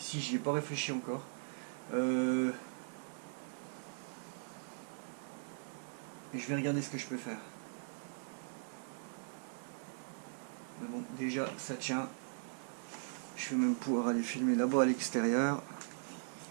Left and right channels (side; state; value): left; silent; digital silence